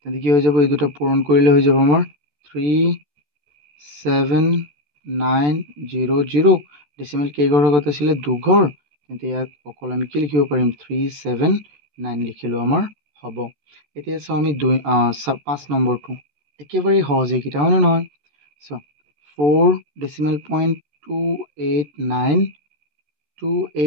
কি হৈ যাব এই দুটা পূৰণ কৰিলে হৈ যাব আমাৰ 37900 ডেচিমেল কেইঘৰ আগত আছিলে দুঘৰ তেন্তে ইয়াত অকল আমি কি লিখিব পাৰিম 379 লিখিলেও আমাৰ হ'ব এতিয়া চাওঁ আমি 5 নম্বৰটো একেবাৰে সহজ এইকেইটা হয়নে নহয় চোৱা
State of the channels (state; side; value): late; left; 14 ms